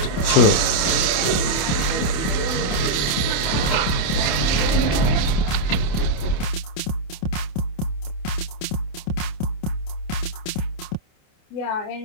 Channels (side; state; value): right; late; 27 ms